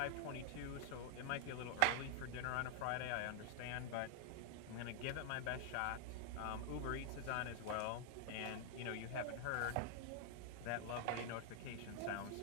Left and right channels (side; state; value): both; different; correlation 0.00